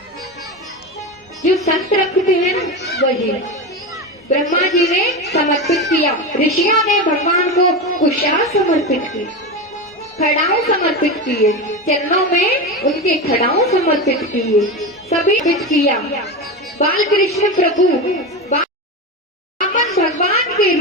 जो संत रखते हैं ना, वही ब्रह्मा जी ने समर्पित किया। ऋषियों ने भगवान को कुशा समर्पित की, खड़ाऊ समर्पित किए, चरणों में उनके खड़ाऊ समर्पित किए, सभी समर्पित किया। बाल कृष्ण प्रभु वामन भगवान के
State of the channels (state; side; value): normal; both; correlation 0.20